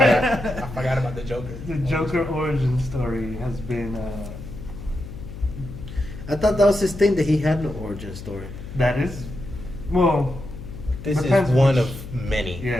forgot about the Joker. The Joker origin story has been I thought that was his thing that he had no origin story. that is, well, This Depends is one which- of many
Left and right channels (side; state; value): left; noise; hum, 11 dB below the sound